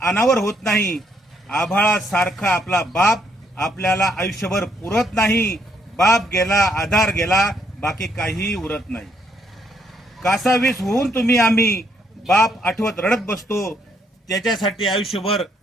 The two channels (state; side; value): normal; both; correlation 0.72